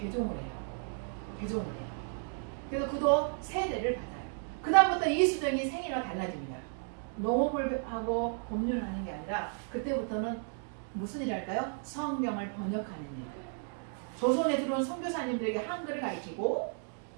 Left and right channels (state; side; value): silent; left; 55 dB below the other